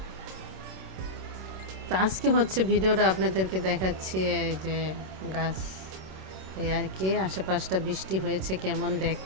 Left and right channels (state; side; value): late; left; 26 ms